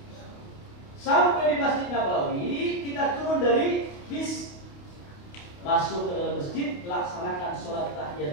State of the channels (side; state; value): right; late; 28 ms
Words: Sampai di Masjid Nabawi, kita turun dari bis, masuk ke dalam masjid, laksanakan sholat